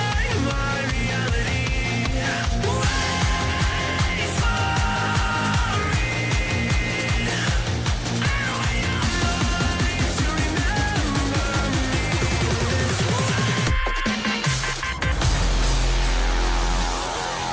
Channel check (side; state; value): both; identical; correlation 1.00